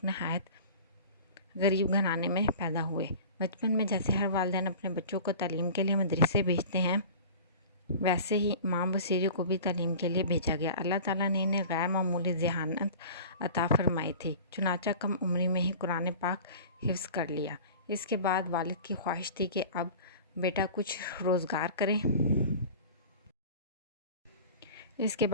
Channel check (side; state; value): both; inverted; correlation -0.39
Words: نہایت غریب گھرانے میں پیدا ہوئے۔ بچپن میں جیسے ہر والدین اپنے بچوں کو تعلیم کے لیے مدرسے بھیجتے ہیں، ویسے ہی امام بصیری کو بھی تعلیم کے لیے بھیجا گیا۔ اللہ تعالیٰ نے انہیں غیر معمولی ذہانت عطا فرمائی تھی، چنانچہ کم عمری میں ہی قرآن پاک حفظ کر لیا۔ اس کے بعد والد کی خواہش تھی کہ اب بیٹا کچھ روزگار